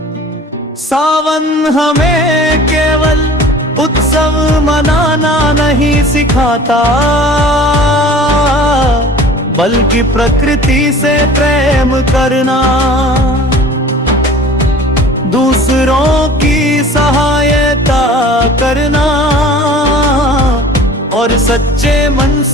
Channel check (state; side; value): normal; both; correlation 0.44